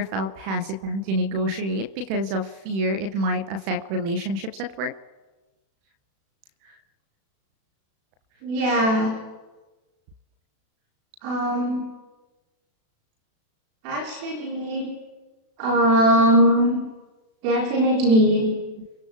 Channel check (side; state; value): left; late; 36 ms